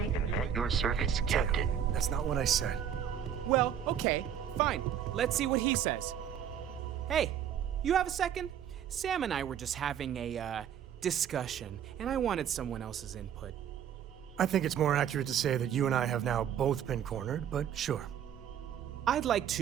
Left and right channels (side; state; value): left; quieter; 9.2 dB